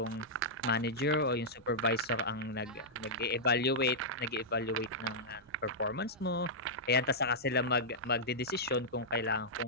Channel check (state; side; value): normal; both; correlation -0.09